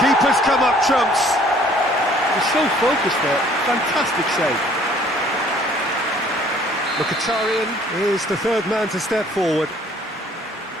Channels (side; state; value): both; normal; correlation 0.57